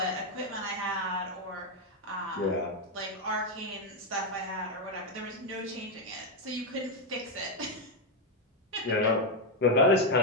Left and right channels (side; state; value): both; normal; correlation 0.03